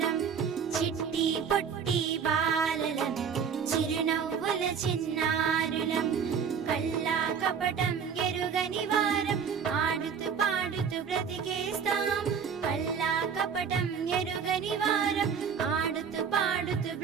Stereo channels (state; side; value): quieter; left; 6.8 dB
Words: చిట్టి పొట్టి బాలలం, చిరునవ్వుల చిన్నారులం, కల్లా కపటం ఎరుగని వారం, ఆడుతూ పాడుతూ బ్రతికేస్తాం. కల్లా కపటం ఎరుగని వారం, ఆడుతూ పాడుతూ